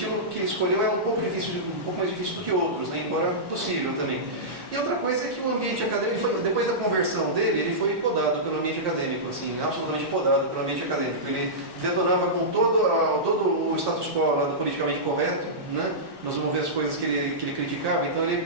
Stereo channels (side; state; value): left; late; 1.1 ms